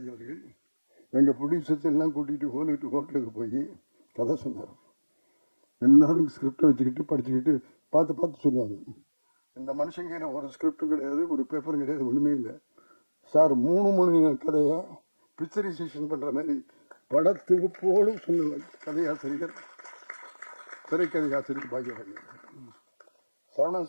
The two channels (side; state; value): both; inverted; correlation -1.00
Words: அவர்கள் எங்கள் ப்ரொடியூசர்ஸ் எல்லாம் கூட்டிகிட்டு ஹோட்டலுக்கு போய் கதை சொன்னார். எல்லாரும் ஸ்கிரிப்டை வச்சுக்கிட்டு படிச்சுக்கிட்டு பார்த்து சொல்லுவாங்க. இந்த மனுஷங்க ஒரு ஸ்கிரிப்டும் கிடையாது, ஒரு பேப்பரும் கிடையாது, ஒன்றுமே இல்லை சார். 3 மணி கதையை பிக்சரைசேஷன் பண்ணுற மாதிரி படத்தொகுப்போடு சொன்ன கதையாசிரியர், திரைக்கதை ஆசிரியர் பாக்யராஜ். சரவணன்